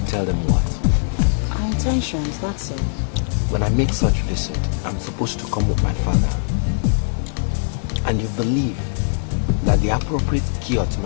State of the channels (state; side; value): silent; right; digital silence